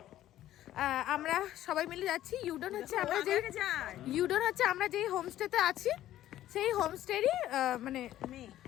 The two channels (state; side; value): quieter; right; 13.2 dB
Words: আমরা সবাই মিলে যাচ্ছি। ইউডেন হচ্ছে আমরা যেই হোমস্টেতে আছি সেই হোমস্টেরই মানে